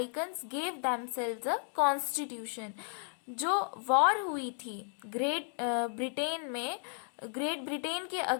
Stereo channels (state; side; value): silent; right; 55 dB below the other